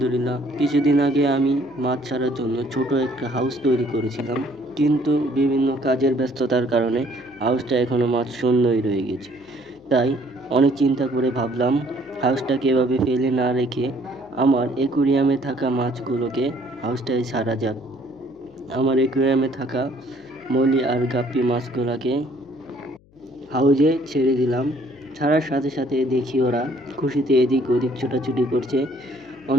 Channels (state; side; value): noise; left; hum, 29 dB below the sound